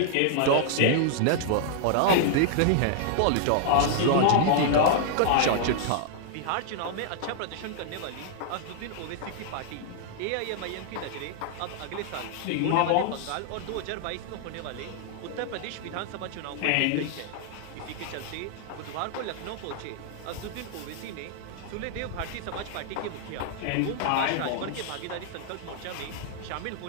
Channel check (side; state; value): both; different; correlation -0.01